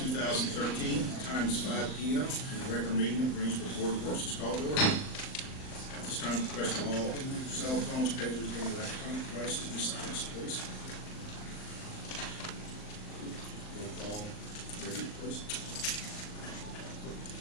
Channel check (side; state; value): right; late; 39 ms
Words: Time is 5 p.m. and the regular meeting of the Greensburg Board of Works is called to order. At this time, request all cell phones, pagers, and electronic devices be silenced, please. Roll call, Herbert, please.